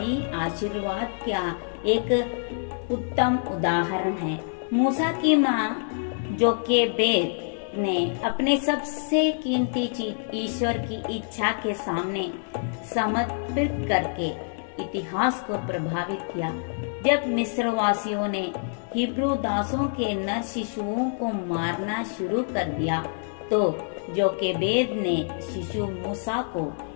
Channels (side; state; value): right; silent; 61 dB below the other